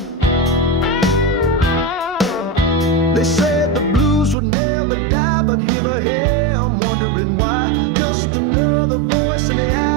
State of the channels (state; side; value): drops out; left; at 4.4 s